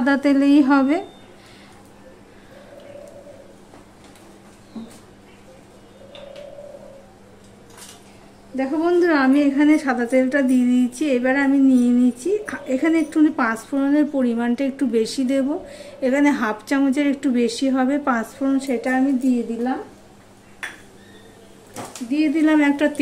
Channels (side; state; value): both; identical; correlation 1.00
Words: তেলেই হবে। দেখো বন্ধুরা, আমি এখানে সাদা তেলটা দিয়ে দিয়েছি। এবার আমি নিয়ে নিচ্ছি, এখানে একটু পাঁচফোড়নের পরিমাণটা একটু বেশি দেব। এখানে হাফ চামচের একটু বেশি হবে পাঁচফোড়ন, সেটা আমি দিয়ে দিলাম। একটা